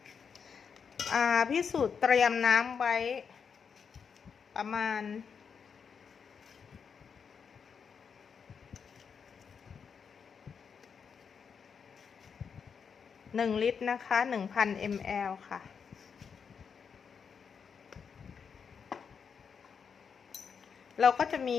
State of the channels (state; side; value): quieter; right; 6.4 dB